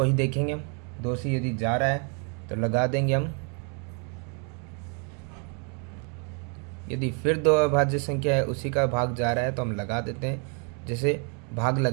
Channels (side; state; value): left; quieter; 38.5 dB